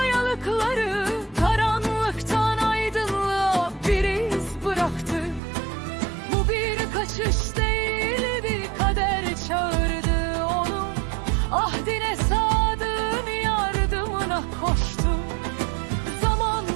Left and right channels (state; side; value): drops out; left; at 5.4 s